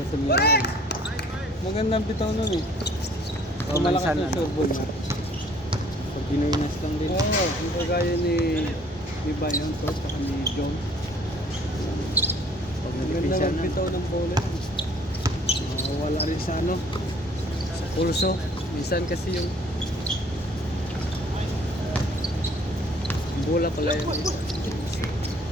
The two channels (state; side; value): normal; both; correlation 0.56